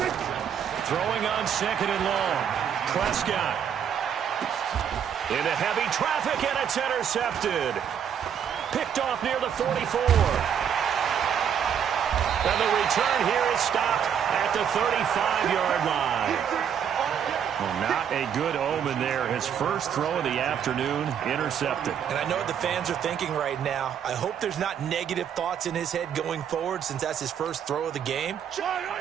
Throwing on 2nd and long. Prescott. Into heavy traffic, and it's intercepted. Picked off near the 44. And the return here is stopped at the 35-yard line. Well, not a good omen there. His first throw of the afternoon, intercepted. And I know what the fans are thinking right now. I hope there's not negative thoughts in his head going forward since that's his first throw of the game.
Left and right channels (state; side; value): quieter; left; 8.4 dB